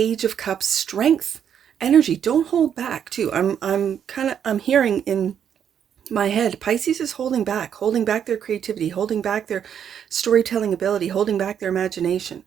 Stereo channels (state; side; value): quieter; left; 8.6 dB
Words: of Cups strength energy. Don't hold back too. I'm hearing in my head, Pisces is holding back their creativity, holding back their storytelling ability, holding back their imagination.